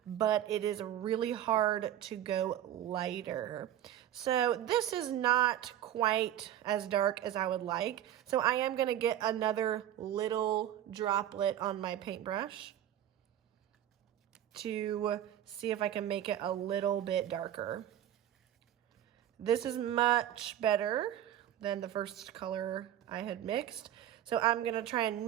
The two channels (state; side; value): quieter; left; 11.5 dB